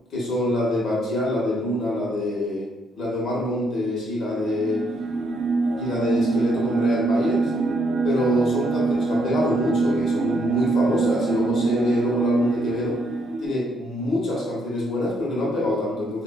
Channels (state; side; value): normal; both; correlation 0.73